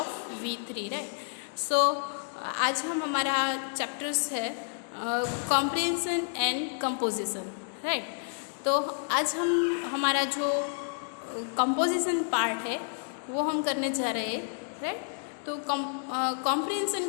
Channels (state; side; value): silent; right; digital silence